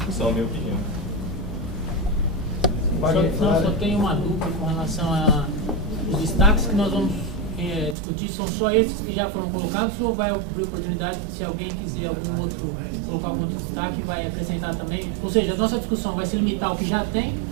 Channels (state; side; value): drops out; left; at 8.0 s